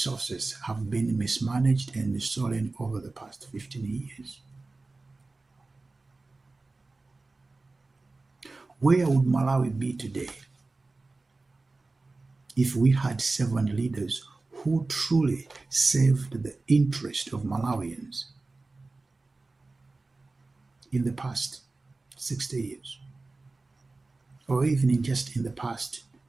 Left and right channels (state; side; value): quieter; left; 3.4 dB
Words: have been mismanaged and stolen over the past 15 years? Where would Malawi be today if we had servant leaders who truly served the interest of Malawians in the past 60 years, or even in the past